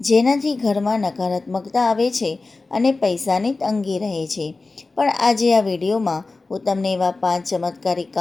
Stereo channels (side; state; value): right; quieter; 3.6 dB